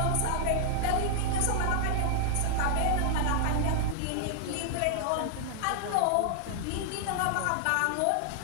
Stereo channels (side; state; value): both; different; correlation 0.00